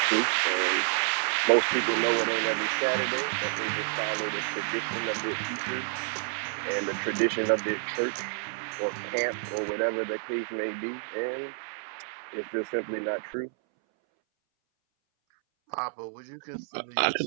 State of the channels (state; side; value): silent; left; 58 dB below the other